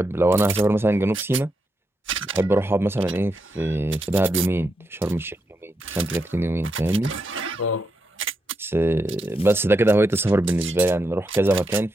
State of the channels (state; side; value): normal; both; correlation 0.83